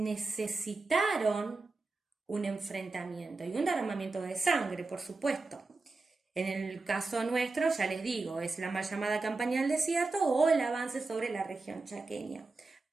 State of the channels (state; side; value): quieter; left; 3.6 dB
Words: un enfrentamiento y un derramamiento de sangre, por supuesto. En el caso nuestro, ya les digo, es la mal llamada campaña del desierto o el avance sobre la región chaqueña,